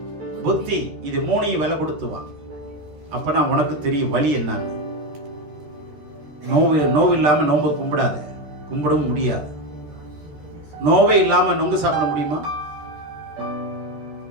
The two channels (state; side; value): late; left; 13 ms